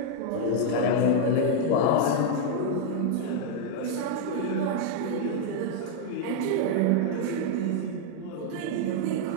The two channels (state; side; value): different; both; correlation 0.00